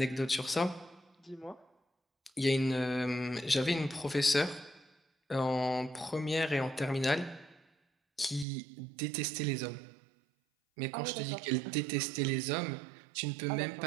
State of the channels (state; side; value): drops out; left; at 8.5 s